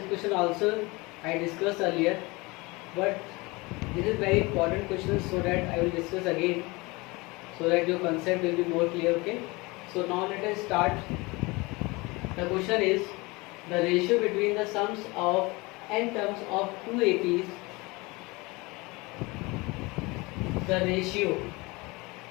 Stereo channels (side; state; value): right; quieter; 24.3 dB